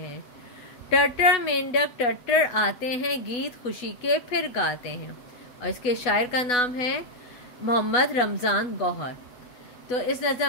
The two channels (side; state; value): right; late; 8.1 ms